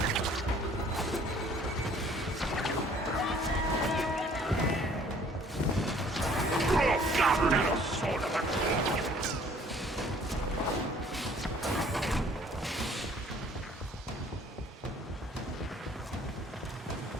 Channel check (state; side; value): normal; both; correlation 0.56